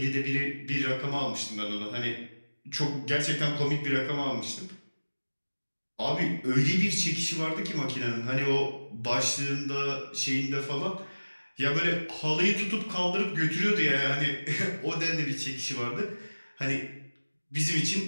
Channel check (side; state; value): both; inverted; correlation -1.00